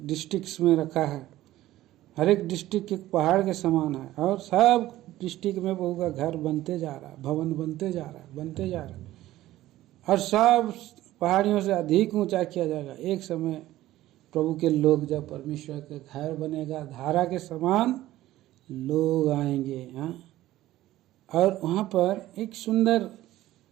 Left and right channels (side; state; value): left; quieter; 15.3 dB